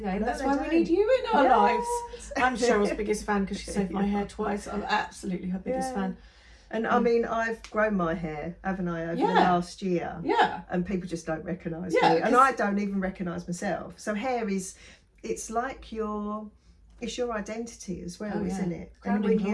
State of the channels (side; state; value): both; identical; correlation 1.00